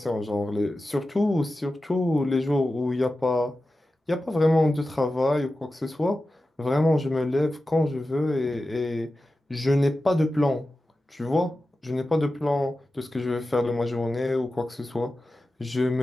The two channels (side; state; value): both; normal; correlation 0.93